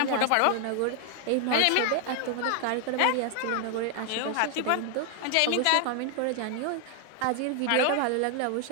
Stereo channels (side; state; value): both; different; correlation 0.00